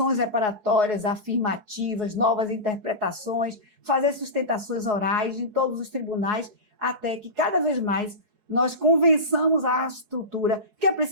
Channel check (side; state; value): left; late; 4.7 ms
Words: reparatórias, afirmativas, novas interpretações, fazer sustentações orais em todos os tribunais, até que cada vez mais nós convençamos a estrutura, que é